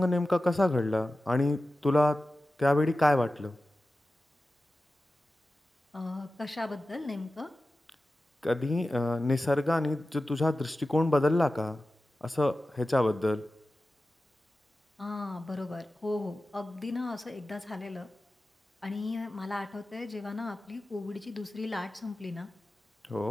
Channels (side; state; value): both; normal; correlation 0.95